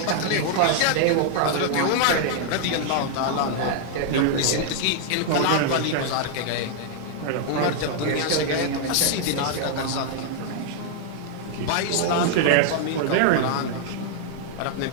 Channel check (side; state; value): both; different; correlation 0.00